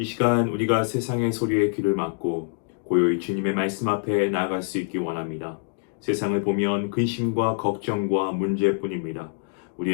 시간 우리가 세상의 소리에 귀를 막고 고요히 주님의 말씀 앞에 나아갈 수 있기 원합니다. 세상을 보면 근심과 걱정과 문제뿐입니다.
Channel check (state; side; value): silent; right; digital silence